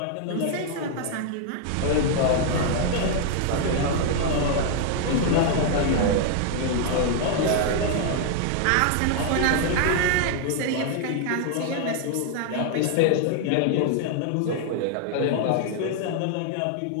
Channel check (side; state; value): both; different; correlation 0.00